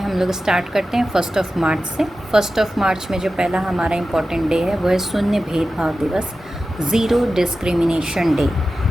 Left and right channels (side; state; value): both; normal; correlation 0.93